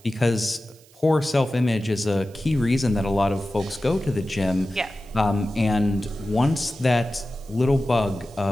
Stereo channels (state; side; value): noise; right; hiss, 27 dB below the sound